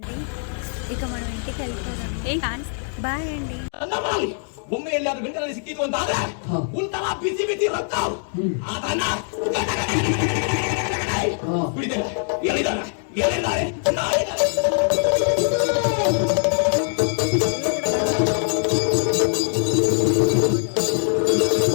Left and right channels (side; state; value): right; silent; 57 dB below the other